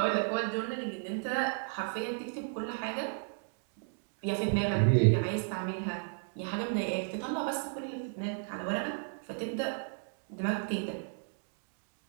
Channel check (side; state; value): left; silent; 55 dB below the other